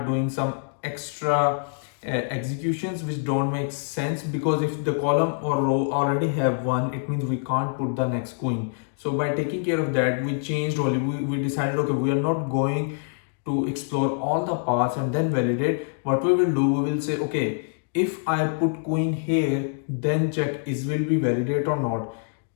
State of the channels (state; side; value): silent; right; digital silence